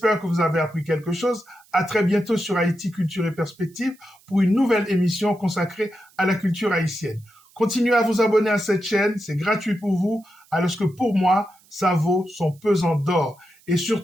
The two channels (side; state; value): right; noise; hiss, 30 dB below the sound